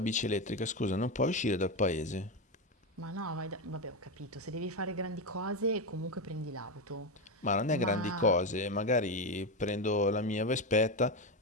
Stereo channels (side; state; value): both; normal; correlation 0.12